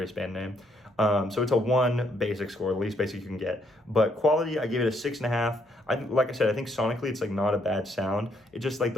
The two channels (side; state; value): both; normal; correlation 0.71